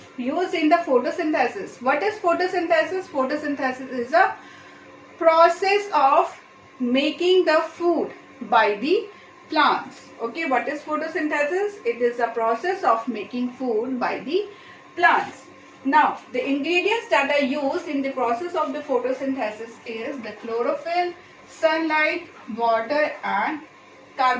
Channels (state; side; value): identical; both; correlation 1.00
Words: in the photosynthesis. What is photosynthesis? Photosynthesis is a process of making the food by the plants. Okay, what is photosynthesis? It is a process of making food by the plants. Now, the ingredients that are used in the process of the photosynthesis is the chlorophyll, sunlight, water, and